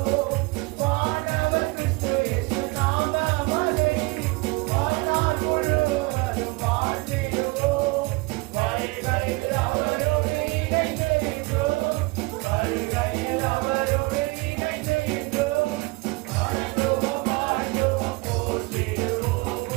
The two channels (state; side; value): quieter; left; 25.4 dB